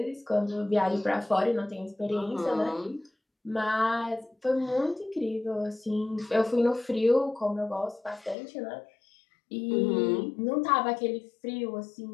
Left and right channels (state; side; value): drops out; right; at 8.3 s